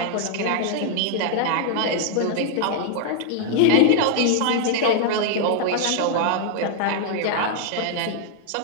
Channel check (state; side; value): different; both; correlation -0.01